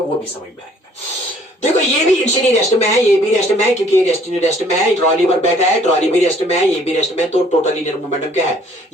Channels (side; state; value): both; normal; correlation 0.59